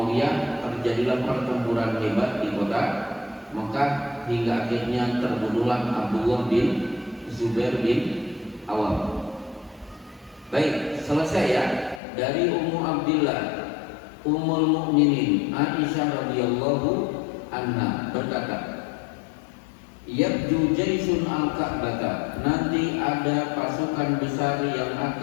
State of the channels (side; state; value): right; drops out; at 12.0 s